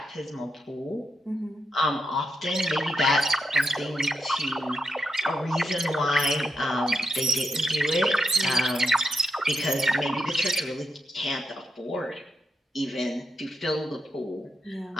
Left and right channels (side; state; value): both; normal; correlation 0.83